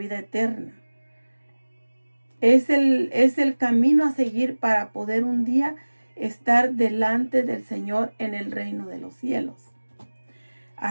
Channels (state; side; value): inverted; both; correlation -1.00